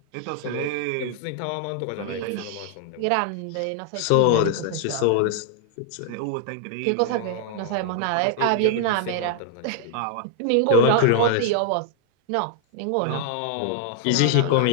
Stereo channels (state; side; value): different; both; correlation -0.01